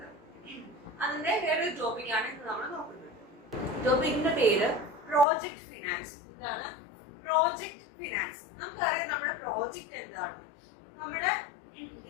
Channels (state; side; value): drops out; right; at 5.2 s